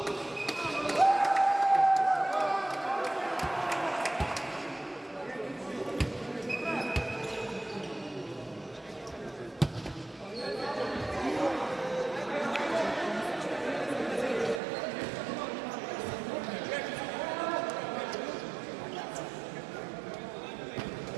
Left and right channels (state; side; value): drops out; left; at 14.6 s